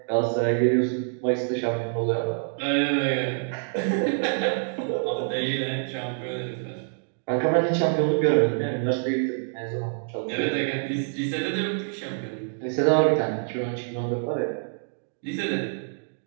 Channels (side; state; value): left; silent; digital silence